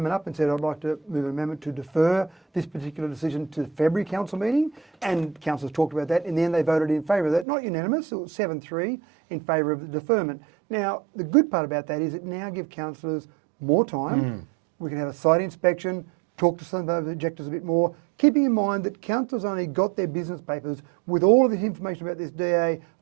up and said, I'd like to move an amendment to defer this particular decision to the February council meeting, and councillors talked about that. In the end, they voted in favour of that. Not unanimous, it was 7-3 in favour of the deferment. Now, the good part about that is it now gives councillors more time. We can have a site inspection, talk to some of those objectors a bit more, keeping in mind that councillors only got their business papers with all of this information about this DA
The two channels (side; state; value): left; drops out; at 7.5 s